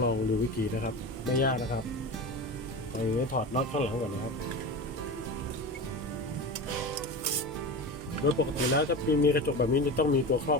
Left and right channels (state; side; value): normal; both; correlation 0.26